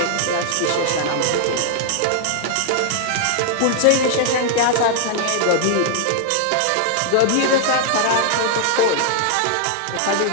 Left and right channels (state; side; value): different; both; correlation 0.00